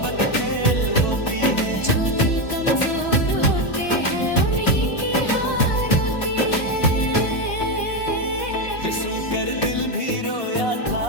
खेल होती है, जो दिल कमजोर होते हैं उन्हीं की हार होती है। ये सुनकर दिल भी रोया था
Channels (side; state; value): right; late; 2.8 ms